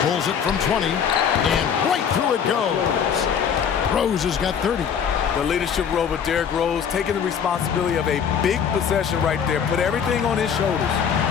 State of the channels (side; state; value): right; quieter; 7.5 dB